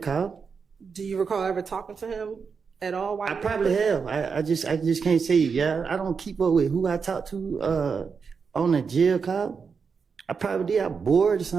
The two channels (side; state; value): left; quieter; 5.6 dB